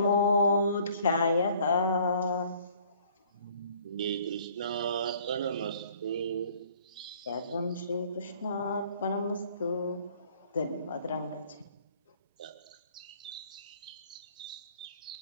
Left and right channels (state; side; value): inverted; both; correlation -0.56